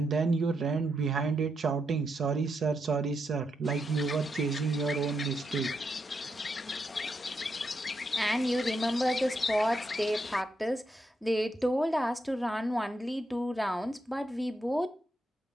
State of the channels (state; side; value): normal; both; correlation 0.82